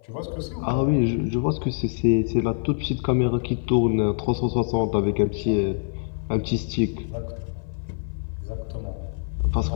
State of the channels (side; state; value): right; silent; 62 dB below the other